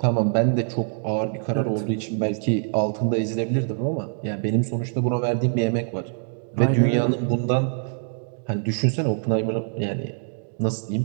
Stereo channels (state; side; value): silent; left; digital silence